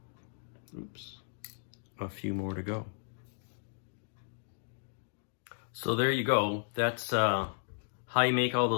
oops, a few more to go. So there you go. That's how you make all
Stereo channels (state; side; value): silent; right; digital silence